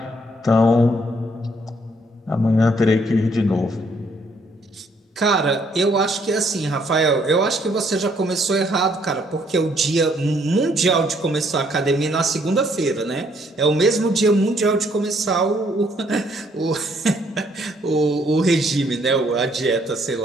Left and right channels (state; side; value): normal; both; correlation 0.68